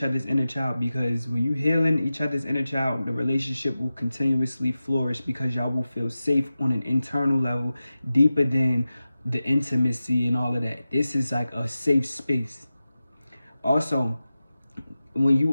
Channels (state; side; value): inverted; both; correlation -0.94